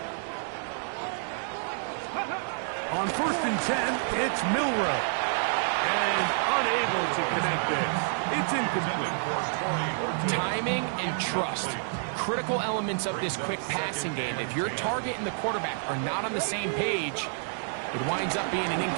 On 1st and 10, it's Milroe. And unable to connect this. It's incomplete. Timing and trust. Critical elements of this quick passing game. If your target and the quarterback are not on the same page, it winds up being an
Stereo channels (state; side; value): silent; left; digital silence